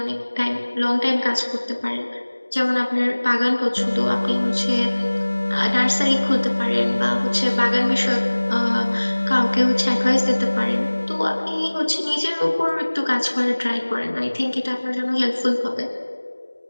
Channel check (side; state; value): both; inverted; correlation -1.00